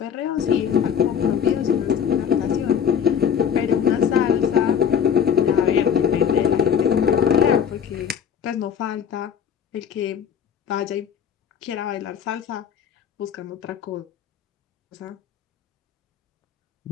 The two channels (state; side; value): quieter; right; 8.0 dB